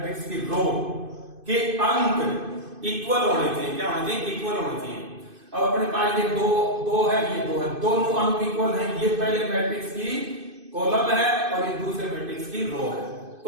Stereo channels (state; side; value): late; left; 2.5 ms